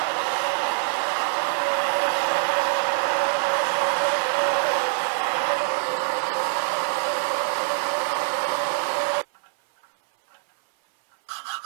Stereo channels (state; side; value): silent; left; 58 dB below the other